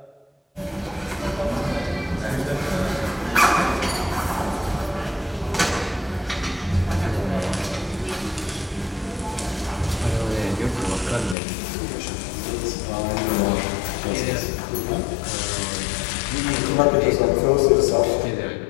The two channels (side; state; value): right; drops out; at 11.4 s